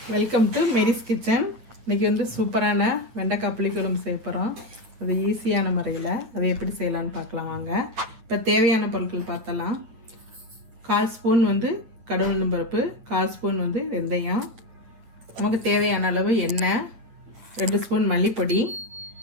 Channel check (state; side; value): late; left; 8.9 ms